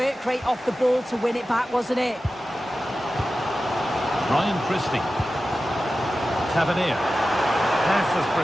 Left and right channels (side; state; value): both; normal; correlation 0.94